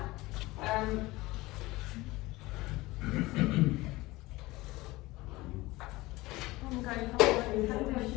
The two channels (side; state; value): right; quieter; 20.2 dB